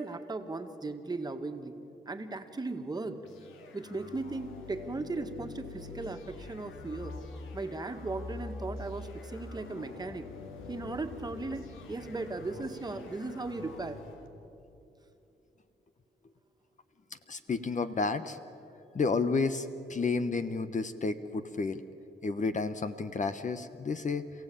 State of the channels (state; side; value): normal; both; correlation 0.62